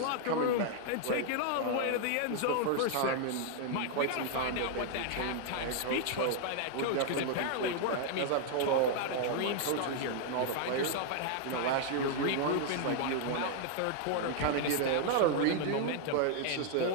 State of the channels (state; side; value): different; both; correlation 0.00